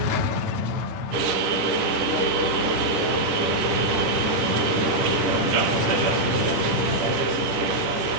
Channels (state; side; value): late; left; 10 ms